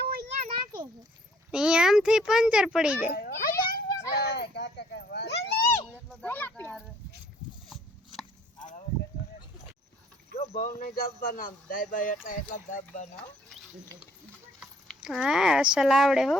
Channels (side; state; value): both; normal; correlation 0.62